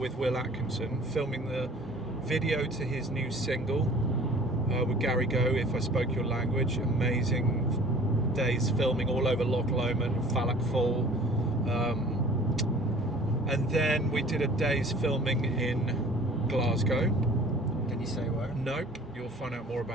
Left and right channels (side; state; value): both; normal; correlation 0.48